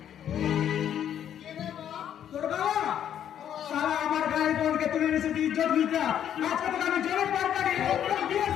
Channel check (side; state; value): right; quieter; 9.8 dB